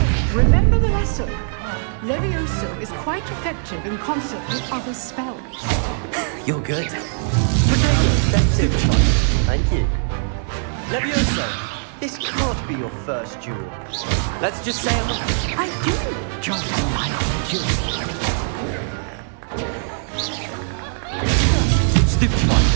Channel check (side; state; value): left; silent; digital silence